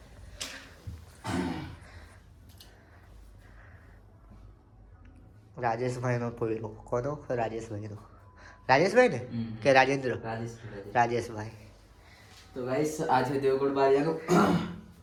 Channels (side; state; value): both; identical; correlation 1.00